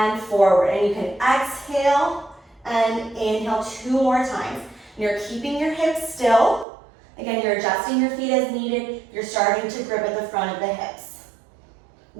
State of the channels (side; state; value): left; drops out; at 6.7 s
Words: forward. And you can exhale and inhale 2 more times. And you're keeping your hips still. Again, you're adjusting your feet as needed. You're starting to grip at the front of the hips.